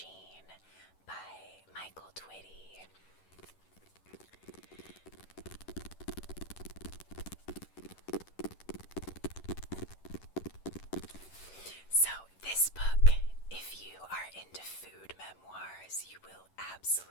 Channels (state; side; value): late; right; 11 ms